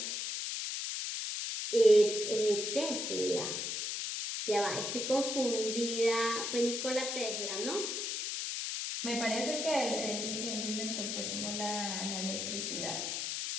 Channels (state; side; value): noise; left; hiss, 2 dB below the sound